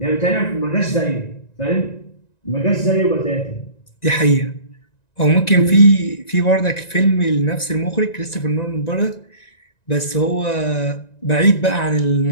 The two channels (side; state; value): right; late; 1.9 ms